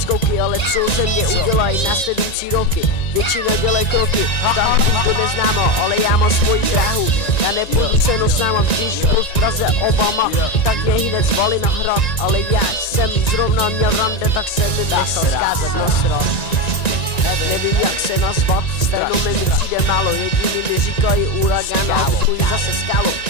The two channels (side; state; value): right; late; 1.9 ms